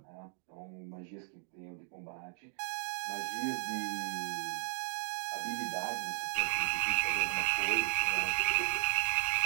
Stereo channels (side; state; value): left; silent; 54 dB below the other